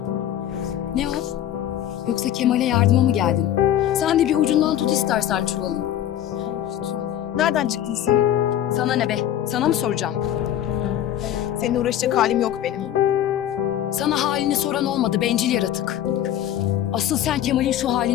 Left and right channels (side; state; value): right; quieter; 11.3 dB